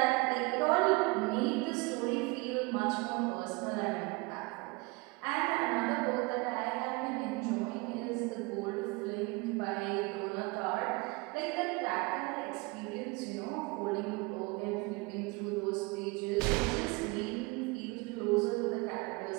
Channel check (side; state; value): left; quieter; 26.2 dB